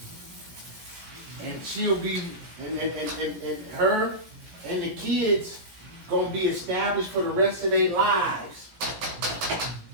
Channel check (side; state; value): left; late; 17 ms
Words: And she'll be, and her and the kids gonna be established for the rest of their lives.